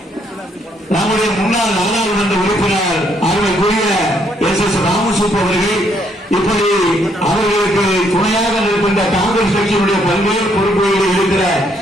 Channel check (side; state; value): both; normal; correlation 0.71